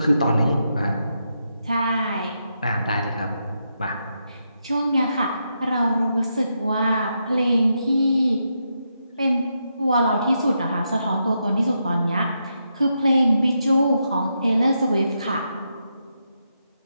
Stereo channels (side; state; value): both; inverted; correlation -0.83